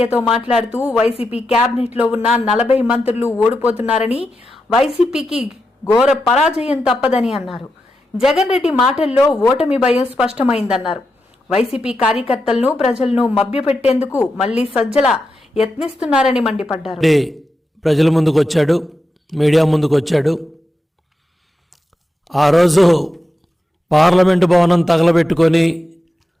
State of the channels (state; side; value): normal; both; correlation 0.88